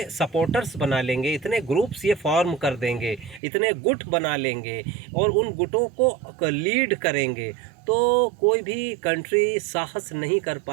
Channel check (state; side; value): drops out; left; at 3.4 s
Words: सपोर्टर्स बना लेंगे, इतने ग्रुप्स ये फॉर्म कर देंगे, इतने गुट बना लेंगे और उन गुटों को लीड करेंगे, तो कोई भी कंट्री साहस नहीं कर